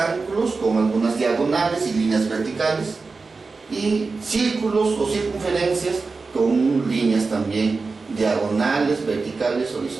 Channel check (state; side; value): quieter; left; 4.2 dB